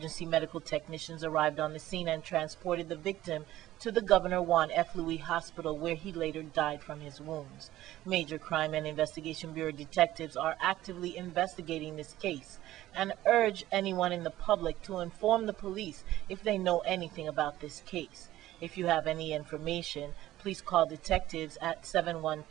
medical technicians arrived on the scene and transported the victim to the Governor Juan F. Louis Hospital, where he later died from his wounds. Major Crime and Investigation Bureau detectives are actively investigating this case and urge anyone in the public to inform the police if they know anything about this case. If you have any information, please call detectives at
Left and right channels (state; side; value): quieter; left; 14.8 dB